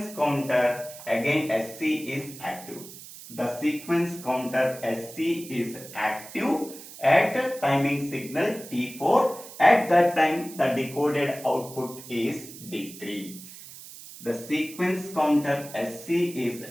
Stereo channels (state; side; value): noise; right; hiss, 15 dB below the sound